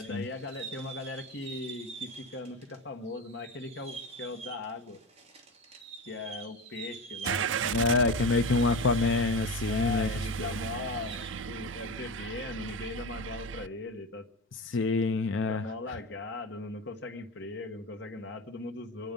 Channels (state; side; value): normal; both; correlation 0.24